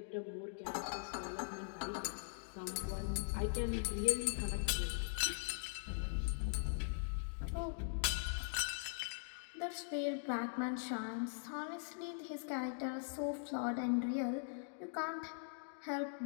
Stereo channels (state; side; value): silent; right; digital silence